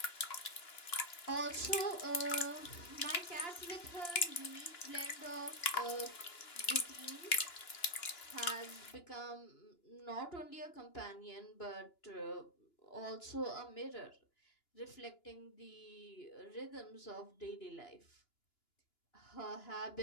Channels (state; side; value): late; right; 2.9 ms